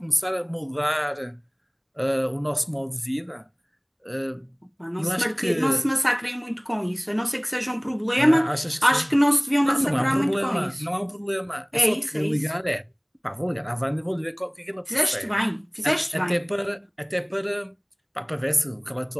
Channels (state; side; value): identical; both; correlation 1.00